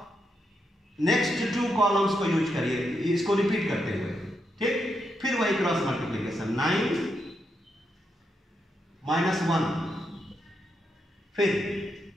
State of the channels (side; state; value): both; normal; correlation 0.82